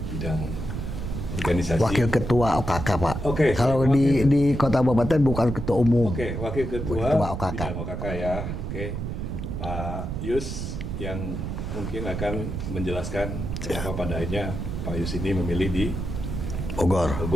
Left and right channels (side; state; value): right; noise; rumble, 4 dB below the sound